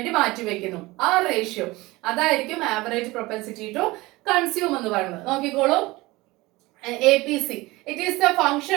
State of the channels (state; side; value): quieter; left; 20.9 dB